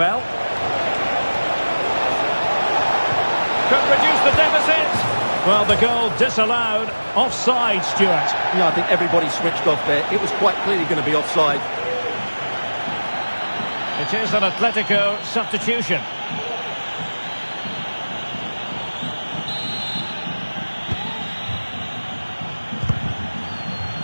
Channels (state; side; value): inverted; both; correlation -1.00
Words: Could reduce the deficit. Well, the goal disallowed. Offside, Stuart. Yeah, I think everybody switched off there. It was quite clearly going to be offside. It is an Atletico substitution.